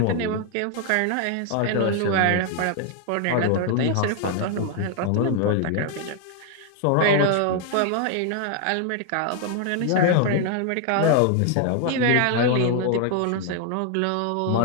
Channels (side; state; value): both; different; correlation 0.00